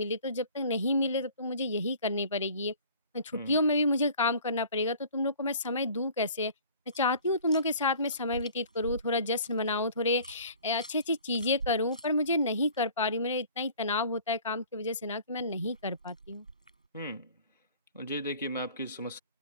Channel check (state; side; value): inverted; both; correlation -0.48